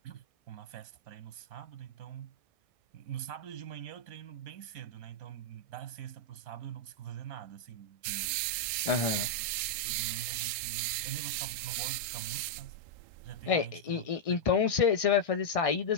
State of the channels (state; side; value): late; right; 1.6 ms